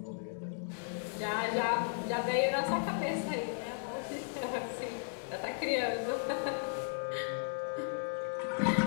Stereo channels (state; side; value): silent; right; digital silence